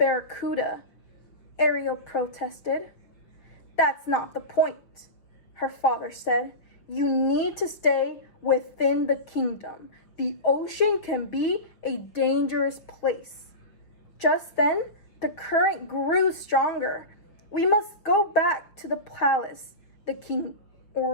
Ariel protested. "That's not the point," her father said. "You need to stay within the kingdom. The ocean can be a dangerous place." Just then, the current grew stronger. "We must go back to the palace," the king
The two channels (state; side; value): late; right; 5.8 ms